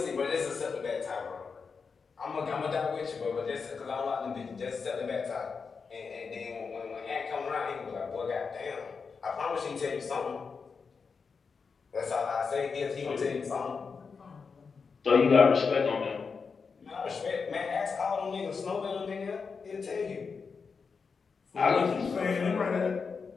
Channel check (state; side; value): quieter; right; 5.3 dB